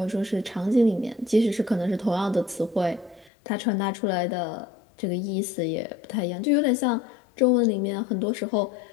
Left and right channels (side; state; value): right; drops out; at 3.3 s